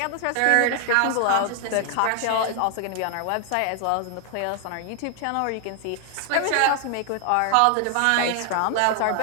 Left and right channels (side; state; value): both; different; correlation 0.00